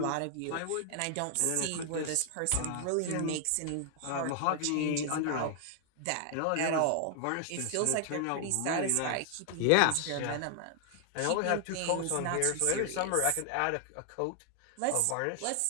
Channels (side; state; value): both; different; correlation 0.00